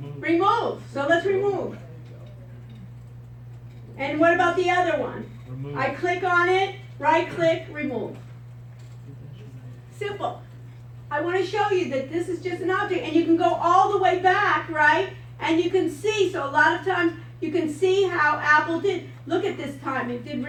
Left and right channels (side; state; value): both; identical; correlation 1.00